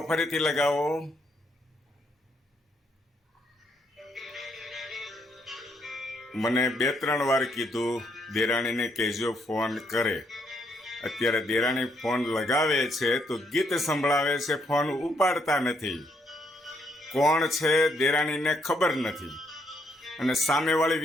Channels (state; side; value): normal; both; correlation 0.74